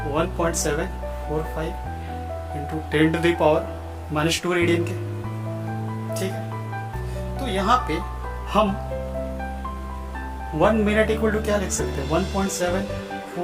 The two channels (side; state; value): both; identical; correlation 1.00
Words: 1.745 इंटू 10⁻⁻² रेडियन के, ठीक है। तो यहाँ पे हम 1 मिनट इक्वल टू क्या लिख सकते हैं,